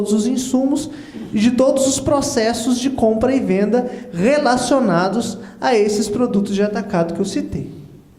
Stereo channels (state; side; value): identical; both; correlation 1.00